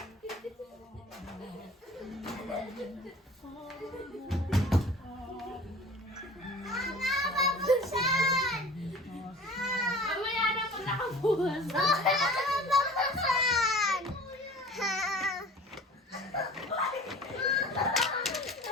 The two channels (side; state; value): both; normal; correlation 0.43